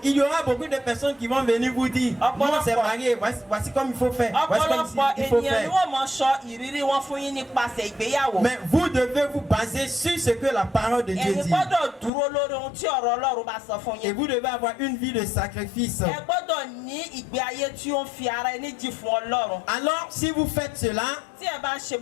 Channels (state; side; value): drops out; right; at 12.1 s